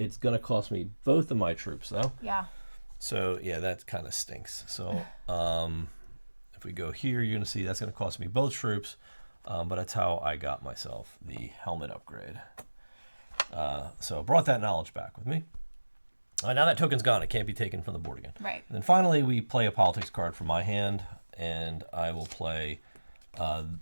going to cost me both of my troops, though. Yeah. So yeah, that kind of stinks. So if we go here, you're going to see that's going to cost me both troops, but that's how I got myself the helmet upgrade. So I brought that knowledge back with me. Now that token's gone. It can't be taken from the board again. Right. And then finally, we play a politics card from my hand, and I will play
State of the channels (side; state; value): both; inverted; correlation -1.00